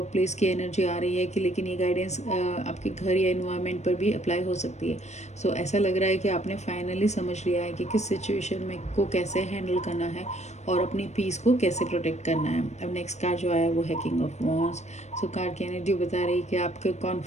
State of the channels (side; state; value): right; late; 0.33 ms